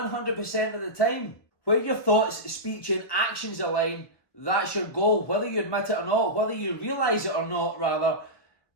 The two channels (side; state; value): right; late; 1.4 ms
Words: of the time. Where your thoughts, speech and actions align, that's your goal, whether you admit it or not, whether you realise it or not, rather.